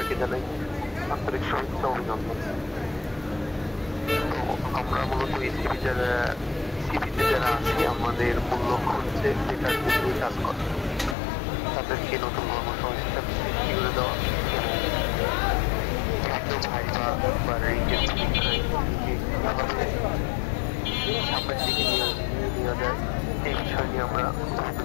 জানাই আন্তরিক শুভেচ্ছা অভিনন্দন। আমরা মূলত সিভিতে যারা আছি আমাদের মূল লক্ষ্য হচ্ছে বেকার নিয়ে কাজ করা, তাদেরকে নতুন কর্মসংস্থান সৃষ্টি করে দেওয়া এবং ভাইবা বা রেঞ্জের সামনের দিকে নিয়ে যায় এই বিষয় নিয়ে আমরা বিভিন্ন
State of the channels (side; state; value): right; drops out; at 11.2 s